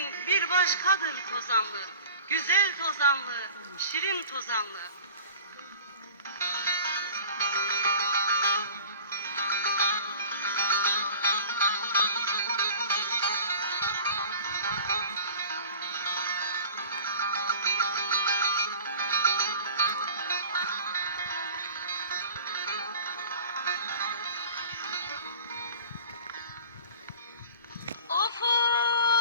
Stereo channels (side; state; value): both; inverted; correlation -0.43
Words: bir başkadır tozanlı. Güzel tozanlı, şirin tozanlı. Of